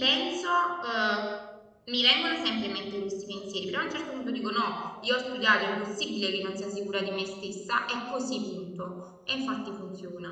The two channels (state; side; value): identical; both; correlation 1.00